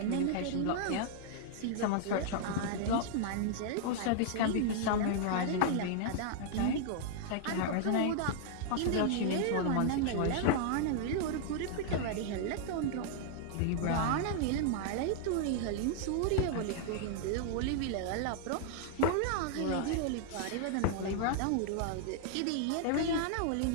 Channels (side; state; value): both; different; correlation -0.01